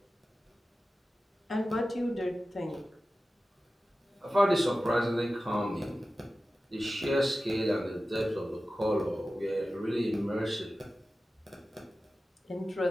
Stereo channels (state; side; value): normal; both; correlation 0.95